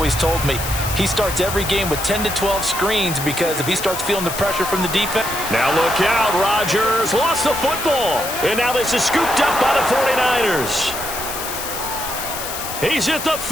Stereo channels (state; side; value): noise; left; hiss, 7 dB below the sound